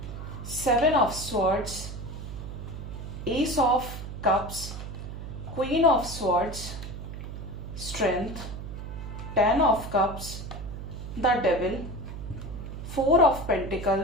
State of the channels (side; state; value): right; noise; hum, 8 dB below the sound